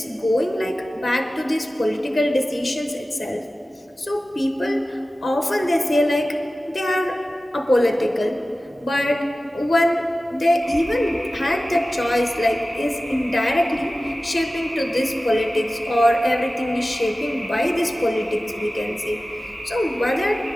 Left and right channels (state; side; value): normal; both; correlation 0.96